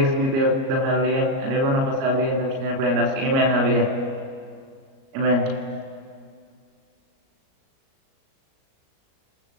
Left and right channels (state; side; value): late; left; 37 ms